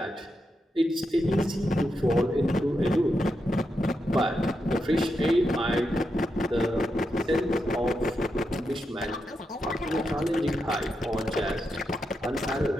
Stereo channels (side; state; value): both; normal; correlation 0.85